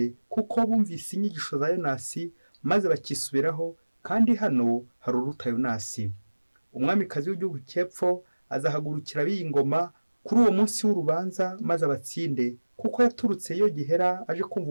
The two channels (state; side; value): inverted; both; correlation -1.00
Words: kuko bumvise inyigisho za Yonasi maze bakisubiraho, kandi hano hari uruta Yonasi. Umwamikazi w'igihugu cy'epfo azahagurukira b'ingoma kuri uwo munsi w'urubanza maze abatsinde, kuko yaturutse iyo gihera aje kumva